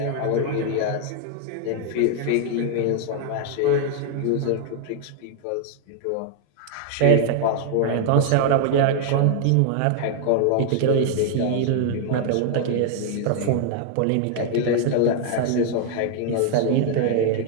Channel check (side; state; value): both; different; correlation 0.00